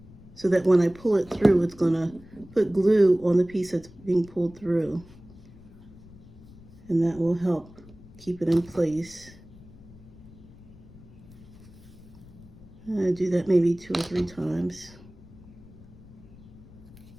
so that when I pull it through, it's going to put glue on the piece that's being pulled through. And that will help keep it in place. And I do that maybe 2 or 3 times.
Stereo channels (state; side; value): noise; left; rumble, 21 dB below the sound